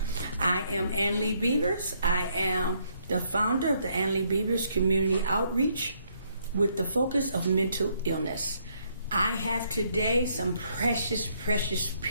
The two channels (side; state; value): both; inverted; correlation -0.71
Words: I am Annie Lee Beavers. I am the founder of the Annie Lee Beavers Community Outreach with the focus of mental illness. I have today some precious